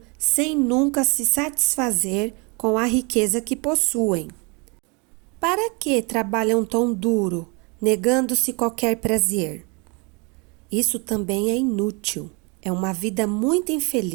sem nunca se satisfazer com a riqueza que possuem. Para que trabalham tão duro, negando-se qualquer prazer? Isso também é inútil. É uma vida muito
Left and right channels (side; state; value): left; quieter; 30.8 dB